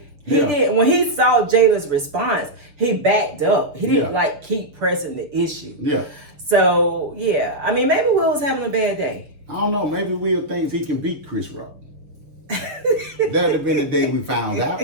when he saw Jada's response, he backed up. He didn't keep pressing the issue. Yeah. So maybe Will was having a bad day. I don't know. Maybe Will thinks he can beat Chris Rock. That'd have been the day we found out.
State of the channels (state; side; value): late; left; 6.6 ms